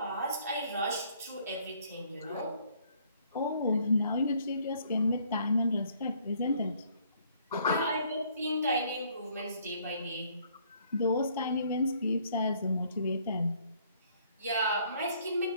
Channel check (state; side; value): inverted; both; correlation -0.63